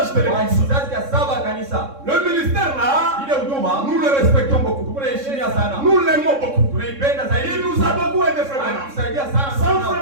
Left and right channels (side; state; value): left; late; 3.6 ms